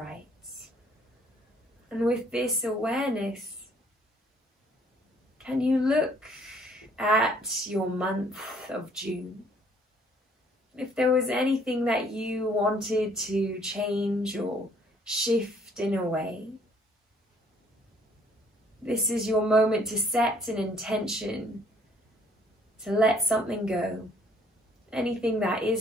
And with this awareness, can you look at your month of June? If there was anything that you wanted to change or shift in a way, this is your moment to set an intention to let something go. Anything that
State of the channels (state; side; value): normal; both; correlation 0.62